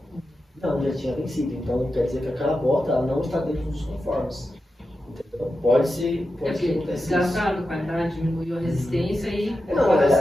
Não, já tinha vencido. Então quer dizer que aquela bota ela não está dentro dos conformes. Entendeu? Pode ser acontecer desgastado, qualidade, diminuiu a resistência e...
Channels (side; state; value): both; normal; correlation 0.90